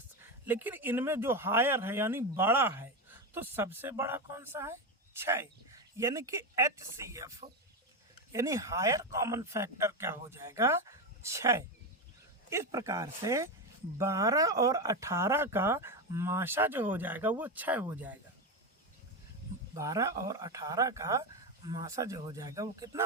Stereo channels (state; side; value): normal; both; correlation 0.13